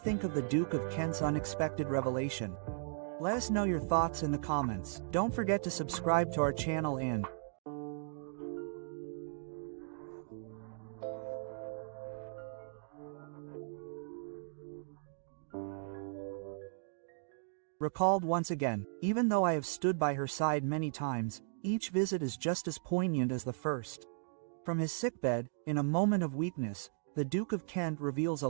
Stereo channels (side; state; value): left; silent; digital silence